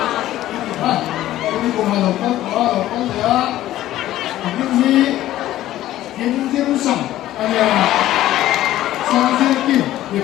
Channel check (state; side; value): quieter; right; 14.1 dB